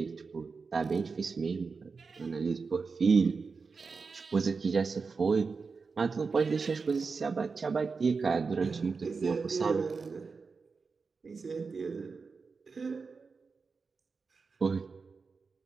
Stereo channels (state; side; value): quieter; left; 4.7 dB